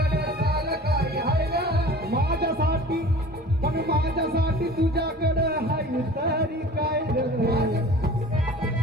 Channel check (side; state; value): both; normal; correlation 0.43